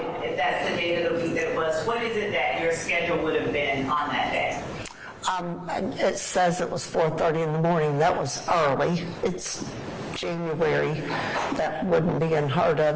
if that's the day of the week that it was, what is it that your schedule would have been on that day? It says it was 4:30 in the morning. That was early. It's January. That wouldn't be unheard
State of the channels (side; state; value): both; identical; correlation 1.00